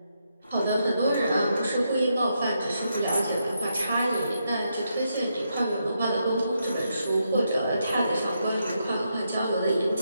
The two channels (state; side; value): inverted; both; correlation -0.81